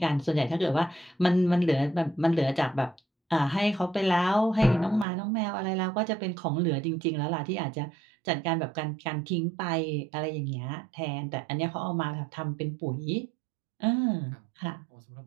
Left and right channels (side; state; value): left; drops out; at 5.1 s